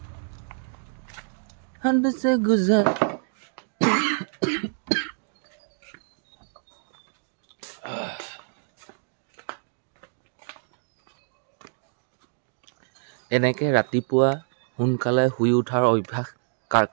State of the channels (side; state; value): left; silent; digital silence